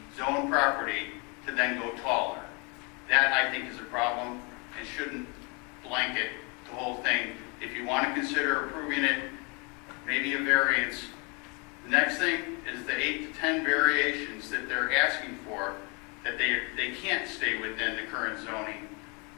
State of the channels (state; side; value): quieter; right; 31.7 dB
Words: zone property to then go taller. That, I think, is a problem and shouldn't blanket the whole thing. If you want to consider approving it, maybe a variance. The next thing is the 8 to 10 variations that they're asking for, that they can't stay within the current zoning